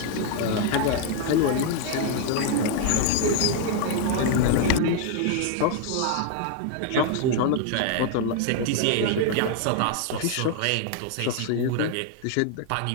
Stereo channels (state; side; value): different; both; correlation 0.00